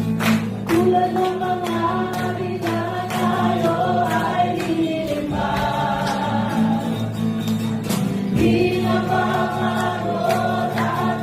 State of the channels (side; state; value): both; identical; correlation 1.00